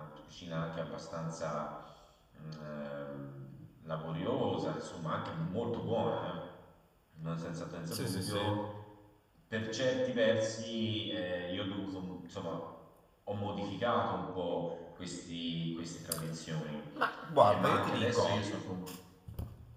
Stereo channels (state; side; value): identical; both; correlation 1.00